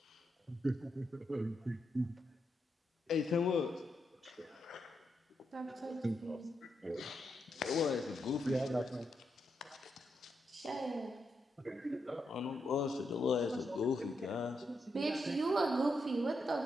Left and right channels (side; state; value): both; normal; correlation 0.83